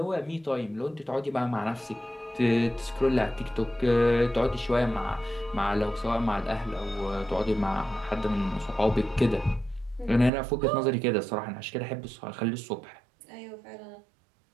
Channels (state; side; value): drops out; left; at 10.3 s